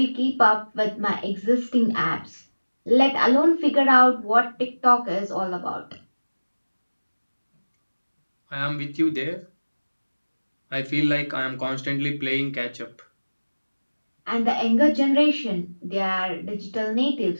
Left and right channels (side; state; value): both; inverted; correlation -1.00